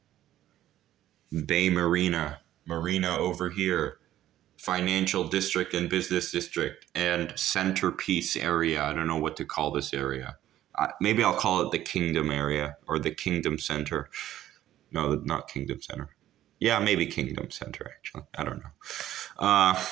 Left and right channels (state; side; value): quieter; left; 13.0 dB